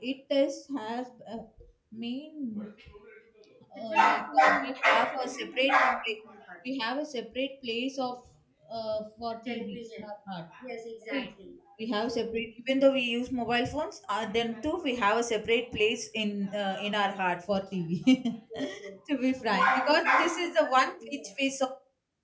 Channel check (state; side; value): identical; both; correlation 1.00